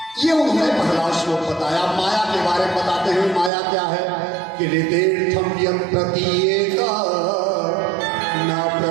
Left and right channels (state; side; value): drops out; left; at 3.5 s